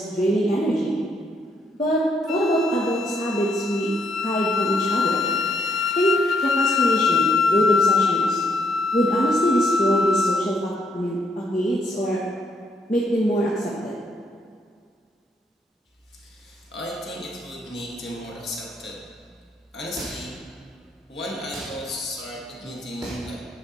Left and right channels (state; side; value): normal; both; correlation 0.73